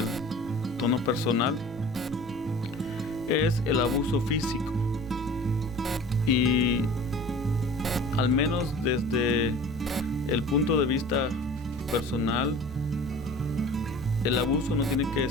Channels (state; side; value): normal; both; correlation 0.42